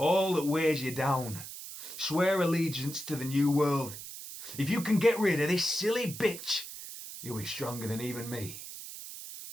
that weighs you down. Swear allegiance to the new world. If you can get rid of this silly bitch, you'll be stronger than even me.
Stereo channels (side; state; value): right; noise; hiss, 11 dB below the sound